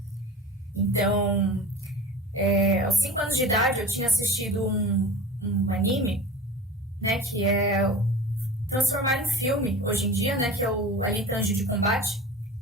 Então, aos 5 anos de idade eu tinha assistido um anime, né, que é transformaram em filme hoje em dia, né, que é o Alita Anjo de Combate.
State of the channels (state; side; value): normal; both; correlation 0.35